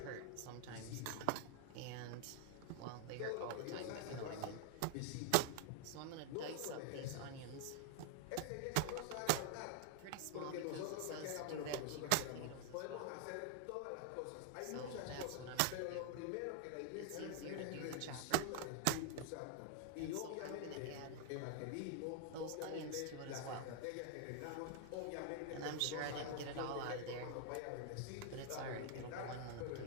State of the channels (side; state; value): both; different; correlation 0.00